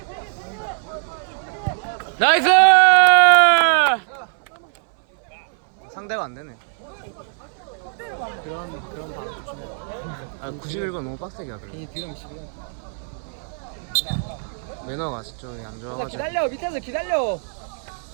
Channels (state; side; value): silent; left; 61 dB below the other